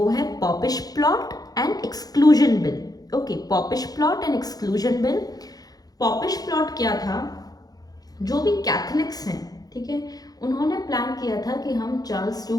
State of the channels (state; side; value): late; right; 0.18 ms